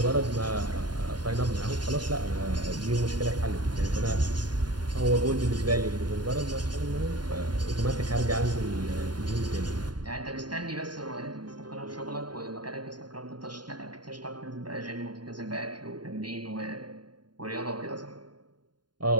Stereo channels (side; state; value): left; late; 0.70 ms